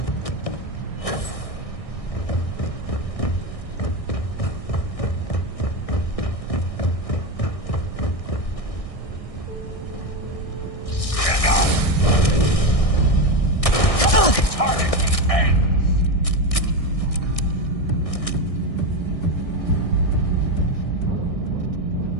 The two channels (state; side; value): late; right; 1.6 ms